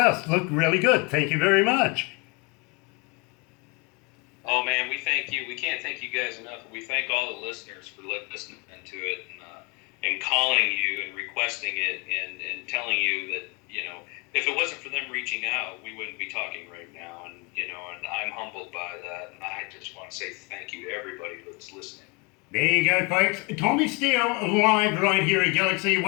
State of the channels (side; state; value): right; quieter; 28.8 dB